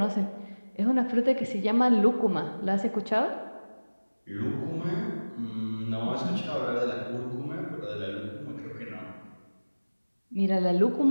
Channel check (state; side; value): inverted; both; correlation -1.00